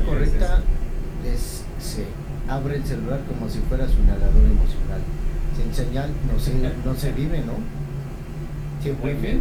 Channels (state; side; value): identical; both; correlation 1.00